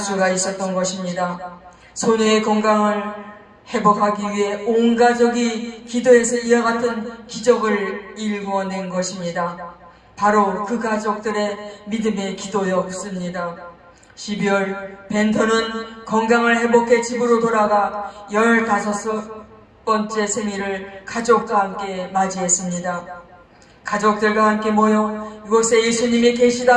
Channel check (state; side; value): identical; both; correlation 1.00